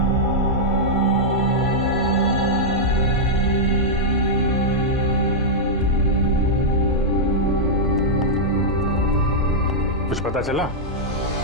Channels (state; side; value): normal; both; correlation -0.06